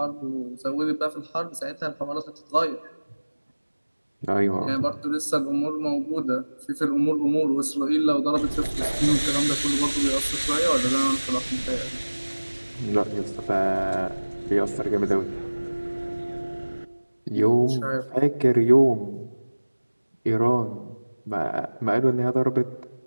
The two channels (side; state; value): both; inverted; correlation -1.00